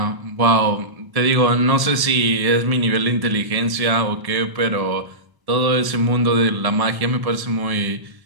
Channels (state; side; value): late; left; 1.1 ms